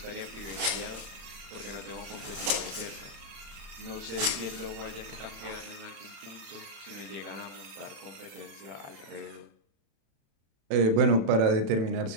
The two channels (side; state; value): left; late; 36 ms